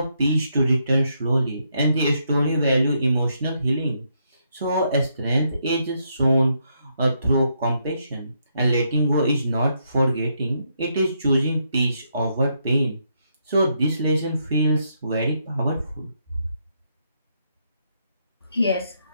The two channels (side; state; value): both; inverted; correlation -0.77